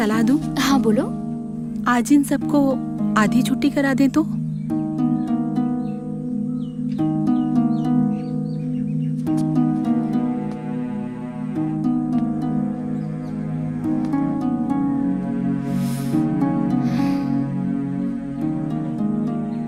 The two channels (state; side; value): identical; both; correlation 1.00